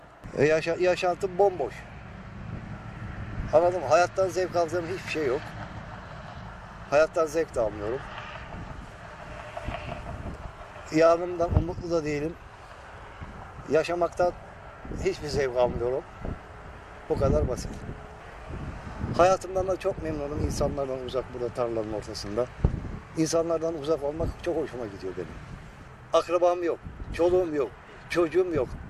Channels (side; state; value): both; identical; correlation 1.00